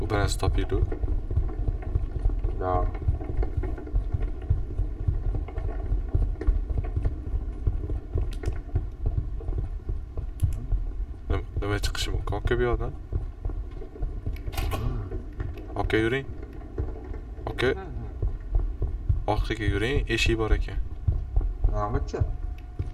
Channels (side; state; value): both; identical; correlation 1.00